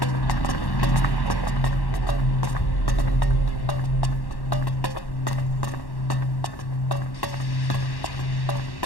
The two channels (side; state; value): right; late; 1.1 ms